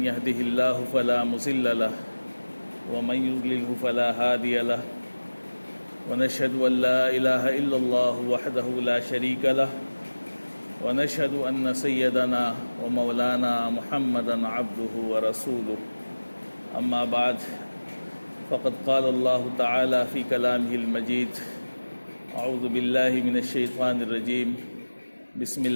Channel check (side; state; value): both; inverted; correlation -1.00